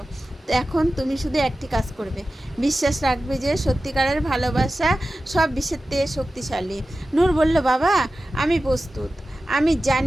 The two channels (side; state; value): both; normal; correlation 0.94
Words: এখন তুমি শুধু একটি কাজ করবে, বিশ্বাস রাখবে যে সত্যিকারের ভালোবাসা সব বিষের থেকে শক্তিশালী। নূর বলল, বাবা, আমি প্রস্তুত। আমি